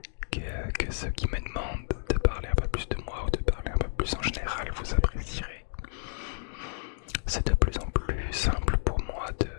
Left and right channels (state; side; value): silent; right; digital silence